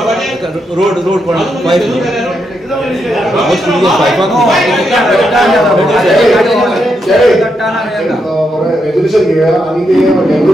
रोड पण पाईप गोष्ट विजय पाईपाक रेझोल्यूशन घेऊया आणि ते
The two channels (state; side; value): normal; both; correlation 0.81